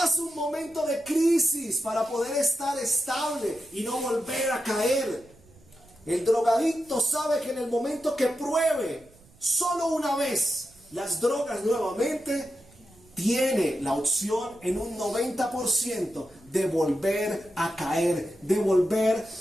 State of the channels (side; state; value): right; noise; rumble, 27 dB below the sound